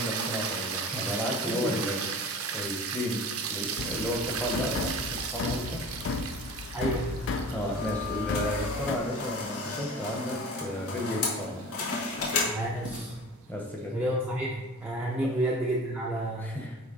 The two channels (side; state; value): both; normal; correlation 0.39